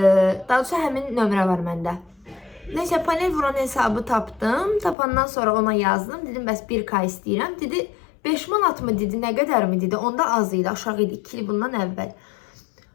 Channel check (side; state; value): right; drops out; at 5.0 s